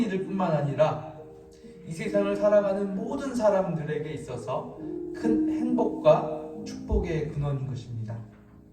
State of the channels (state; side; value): identical; both; correlation 1.00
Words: 뿐만 아니라 이 세상을 살아가는 모든 사람들에게 있어서 큰 행복과 축복의 근원인 것입니다.